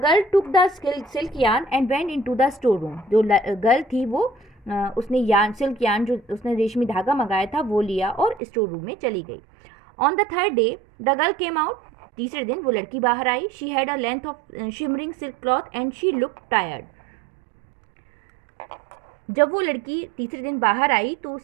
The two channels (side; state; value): left; drops out; at 8.4 s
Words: girl took the silk yarn and went into the store room. जो गर्ल थी वो उसने सिल्क यार्न, जो उसने रेशमी धागा मंगाया था, वो लिया और स्टोर रूम में चली गई. On the third day the girl came out, तीसरे दिन वो लड़की बाहर आई. She had a length of shimmering silk cloth and she look tired. जब वो लड़की तीसरे दिन बाहर आई तो